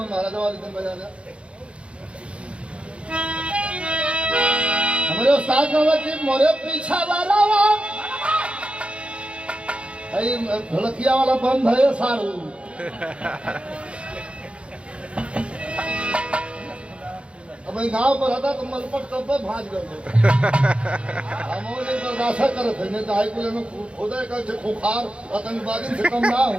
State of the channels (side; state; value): left; late; 0.059 ms